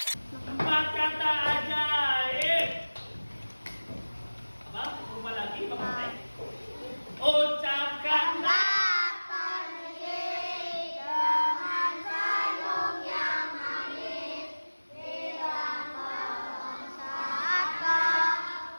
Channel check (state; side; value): inverted; both; correlation -1.00